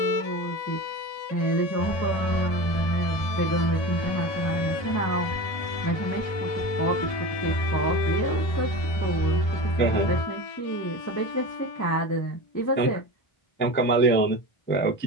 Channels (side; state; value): right; late; 1.7 ms